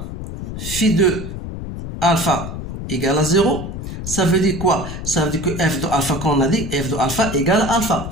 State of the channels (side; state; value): left; noise; rumble, 7 dB below the sound